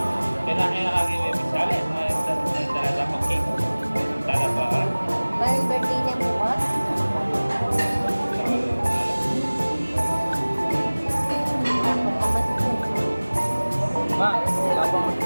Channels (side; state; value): both; inverted; correlation -1.00